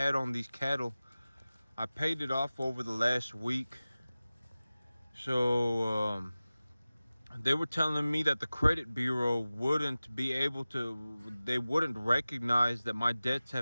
on these cattle, I paid it off over the last week. So they were telling me that the credit bureau wouldn't be able to, they wouldn't recognize that my debts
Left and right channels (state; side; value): inverted; both; correlation -0.97